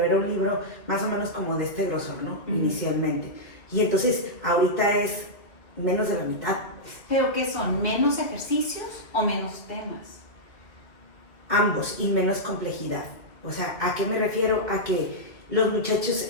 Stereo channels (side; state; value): right; late; 2.0 ms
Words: era un libro más o menos como de este grosor, ¿no? Inicialmente. Y entonces ahorita es menos de la mitad. ¿Pero qué son? ¿Menos ejercicios o menos temas? Ambos, y menos complejidad. O sea, ¿a qué me refiero? A que los muchachos,